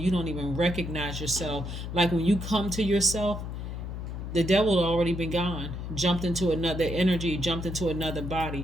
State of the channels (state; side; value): noise; left; hum, 6 dB below the sound